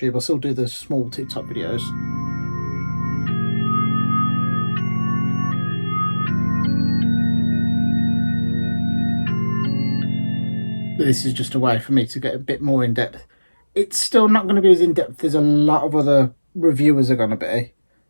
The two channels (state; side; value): inverted; both; correlation -1.00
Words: I'll still do the small TikTok videos. But this is just a way for me to get a bit more in-depth. It's still not going to be as in-depth as a lot of other reviewers are going to be,